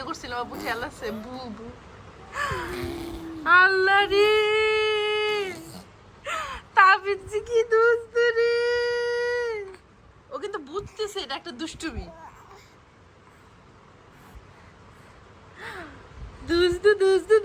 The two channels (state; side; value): identical; both; correlation 1.00